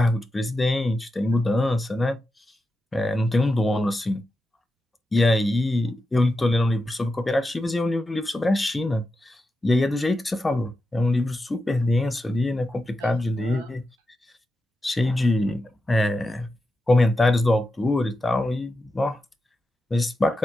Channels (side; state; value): both; normal; correlation 0.90